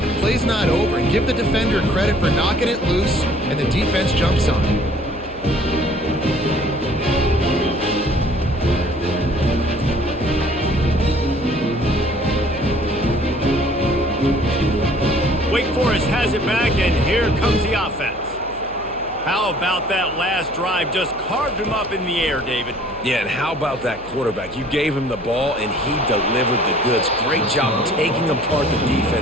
play's not over. And give the defender credit for knocking it loose, and the defense jumps on it. Wake Forest has it back, and here comes the offense. How about that last drive? Just carved him up in the air, David. Yeah, and how about that quarterback? You gave him the ball, and he delivered the goods. Great job taking apart the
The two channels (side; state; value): left; noise; hum, 20 dB below the sound